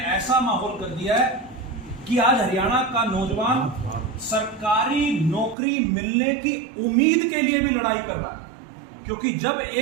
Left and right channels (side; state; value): left; drops out; at 5.6 s